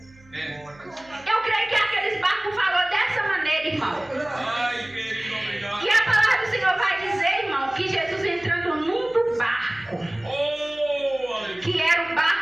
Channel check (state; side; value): noise; right; hum, 27 dB below the sound